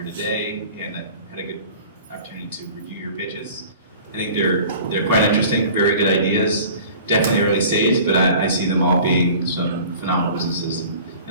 today, and I had a good opportunity to review your pitches. I think they're quite interesting, very good ideas. Definitely early stage, but I see them all being some phenomenal businesses.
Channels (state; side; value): inverted; both; correlation -0.44